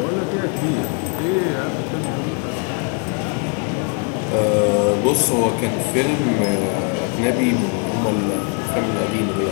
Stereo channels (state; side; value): quieter; right; 38.5 dB